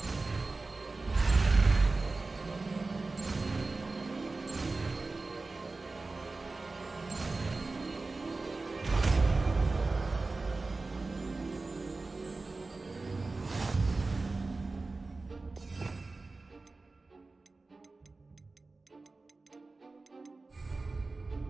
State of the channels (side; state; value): left; quieter; 3.6 dB